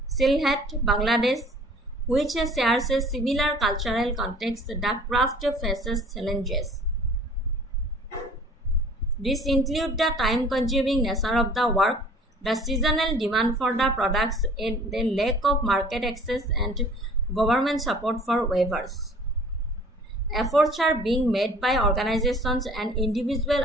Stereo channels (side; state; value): both; normal; correlation 0.50